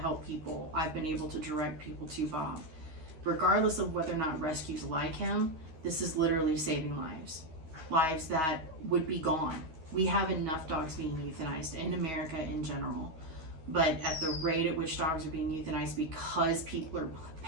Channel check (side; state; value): left; late; 13 ms